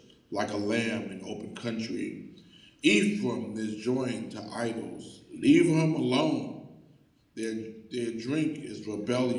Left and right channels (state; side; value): identical; both; correlation 1.00